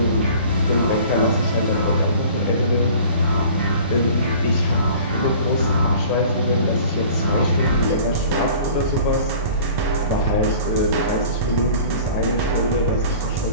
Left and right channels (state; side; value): inverted; both; correlation -0.46